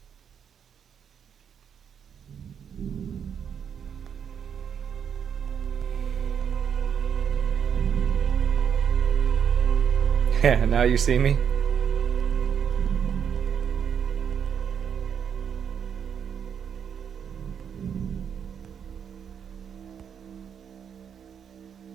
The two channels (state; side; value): quieter; left; 7.8 dB